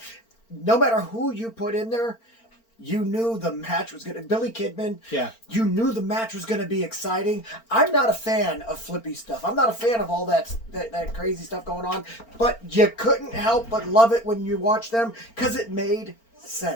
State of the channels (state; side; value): late; right; 4.4 ms